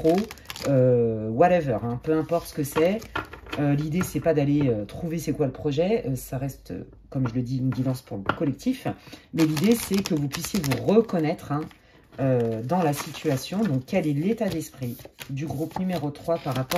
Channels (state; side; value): identical; both; correlation 1.00